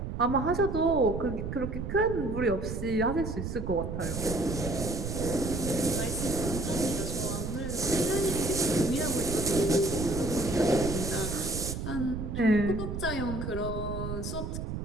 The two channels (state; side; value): noise; right; rumble, 5 dB below the sound